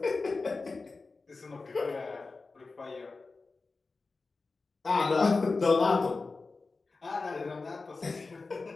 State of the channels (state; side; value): quieter; right; 3.9 dB